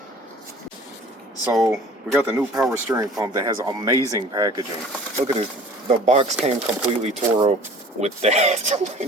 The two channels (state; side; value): normal; both; correlation 0.47